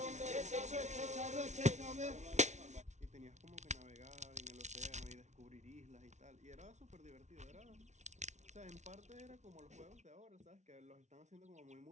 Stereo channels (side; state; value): left; late; 0.33 ms